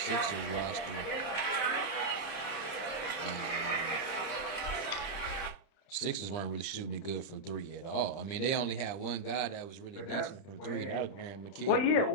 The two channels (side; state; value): right; late; 30 ms